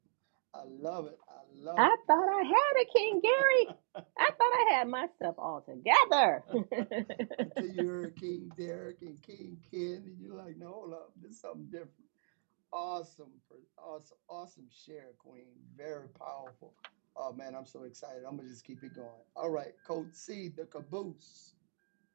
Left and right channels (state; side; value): silent; left; 53 dB below the other